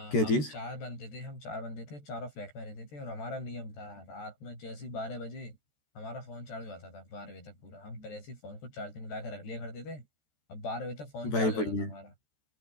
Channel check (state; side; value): late; right; 13 ms